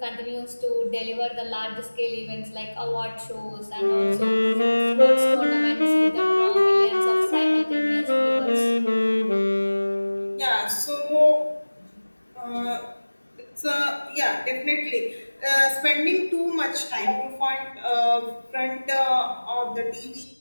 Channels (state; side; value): inverted; both; correlation -1.00